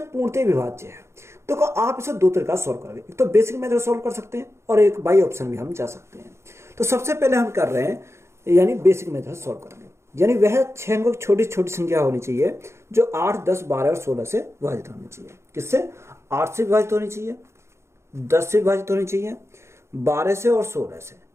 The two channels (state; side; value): late; left; 0.13 ms